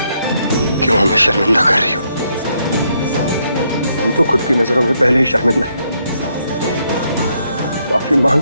क्यों हमें शर्मिंदा कर रही हो? हम तो खुद की नजरों में पहले ही शर्मिंदा हैं। माफी मांग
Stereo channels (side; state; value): both; inverted; correlation -0.75